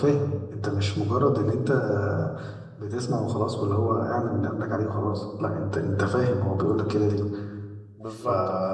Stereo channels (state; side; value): identical; both; correlation 1.00